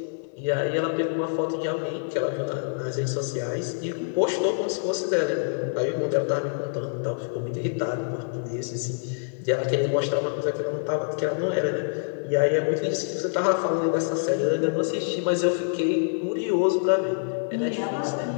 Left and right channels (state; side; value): silent; right; digital silence